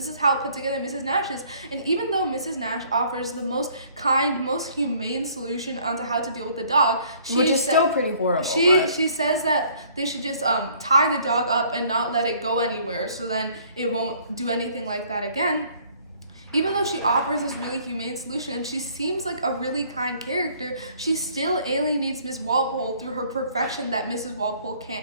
is how put together Mrs. Nash is. And even though Mrs. Nash offers the most kind, most humane solution onto how to deal with the dog, which is still pretty horrible. She says that they should just tie the dog up and not let it go anywhere, so then it won't do anything like that again. Even though she offers this really humane solution and she seems like a really kind character, she still alienates Miss Walpole through her perfection that Mrs. Walpole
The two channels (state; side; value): inverted; both; correlation -0.59